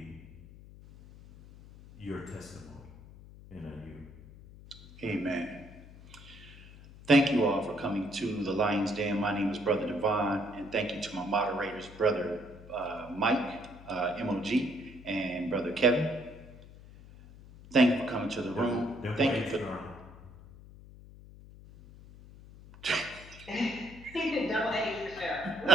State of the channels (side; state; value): left; noise; hum, 19 dB below the sound